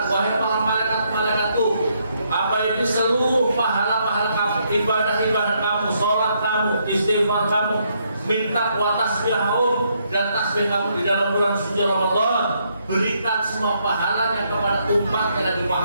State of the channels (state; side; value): inverted; both; correlation -0.74